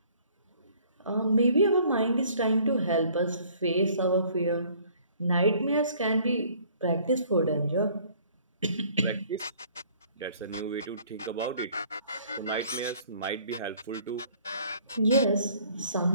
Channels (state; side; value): inverted; both; correlation -0.57